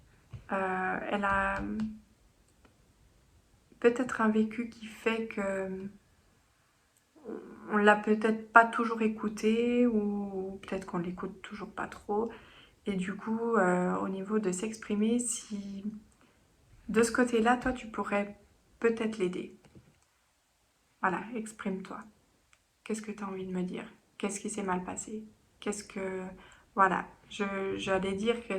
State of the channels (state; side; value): identical; both; correlation 1.00